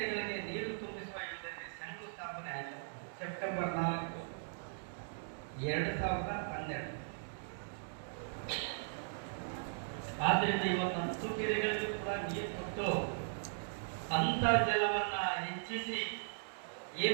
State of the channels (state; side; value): silent; left; digital silence